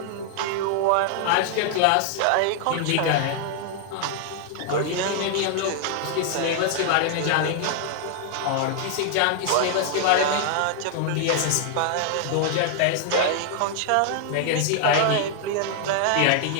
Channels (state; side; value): different; both; correlation 0.00